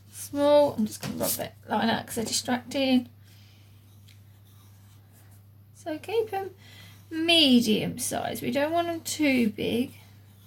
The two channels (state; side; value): identical; both; correlation 1.00